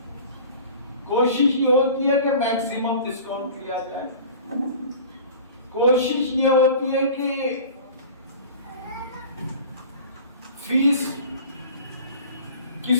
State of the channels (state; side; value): inverted; both; correlation -0.41